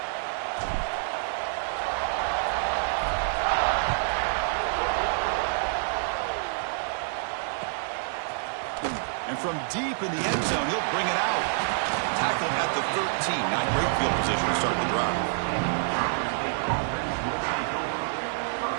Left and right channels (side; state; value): left; silent; digital silence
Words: And from deep in the end zone, he'll bring it out. Tackled at the 13. Not great field position to start the drive.